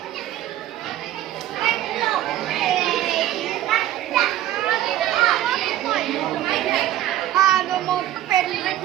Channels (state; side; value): quieter; left; 13.4 dB